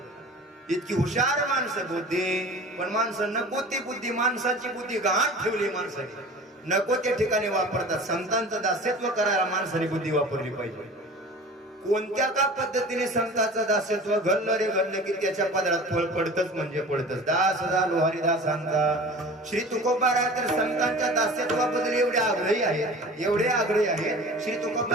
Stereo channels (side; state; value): both; normal; correlation 0.39